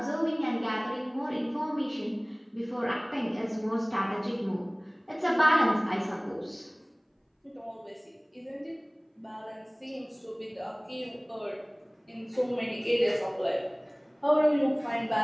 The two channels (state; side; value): identical; both; correlation 1.00